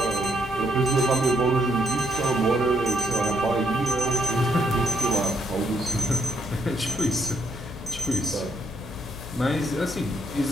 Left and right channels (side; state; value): left; noise; hum, 15 dB below the sound